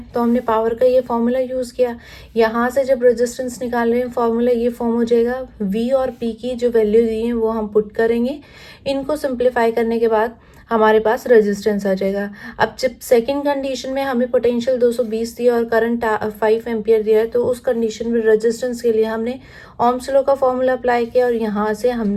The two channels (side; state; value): both; identical; correlation 1.00